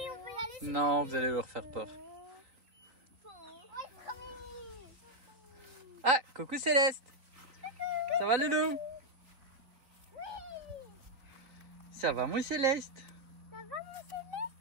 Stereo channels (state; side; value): late; left; 3.9 ms